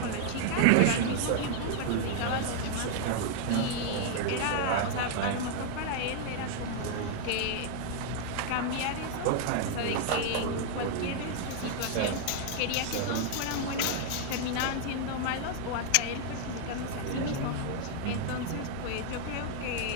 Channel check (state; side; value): different; both; correlation 0.00